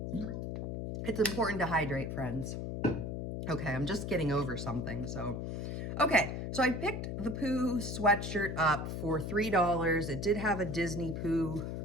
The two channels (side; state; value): left; noise; hum, 4 dB below the sound